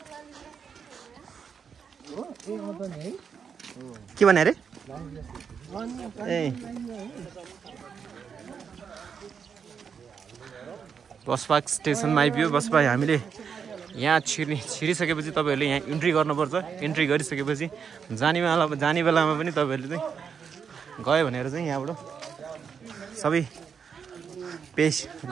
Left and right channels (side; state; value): left; quieter; 6.7 dB